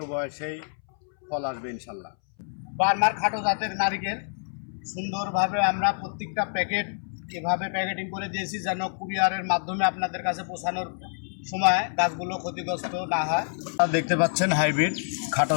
বয়সেই ফল আসবে ইনশাল্লাহ। বার্মার খাটো জাতের নারিকেল সুন্দরভাবে আমরা প্রত্যেকটা প্যাকেট এভাবে প্যাকেটিং করে দিয়েছি যেন কুরিয়ারের মাধ্যমে আপনাদের কাছে পৌঁছানোর সময় গাছগুলো ক্ষতিগ্রস্ত না হয়। দেখতে পাচ্ছেন হাইব্রিড খাটো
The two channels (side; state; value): right; silent; 60 dB below the other